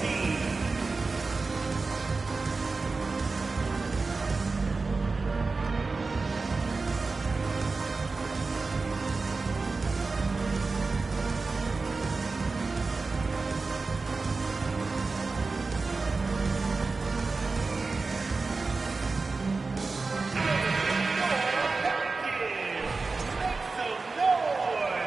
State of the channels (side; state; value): left; quieter; 4.0 dB